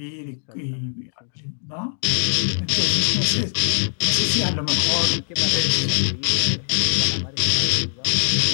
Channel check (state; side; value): silent; right; digital silence